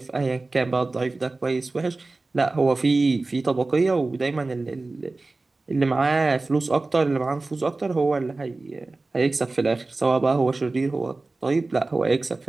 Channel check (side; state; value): left; quieter; 3.4 dB